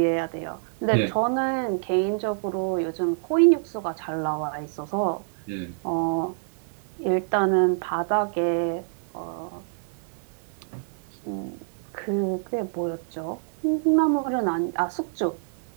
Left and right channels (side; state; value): left; silent; digital silence